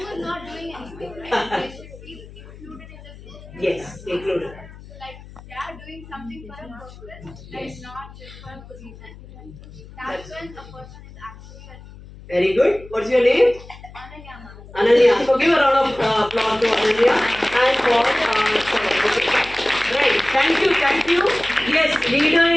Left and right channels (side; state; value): left; noise; hum, 18 dB below the sound